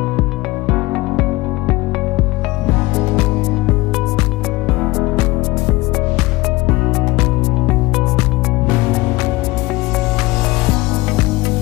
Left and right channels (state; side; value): quieter; right; 21.0 dB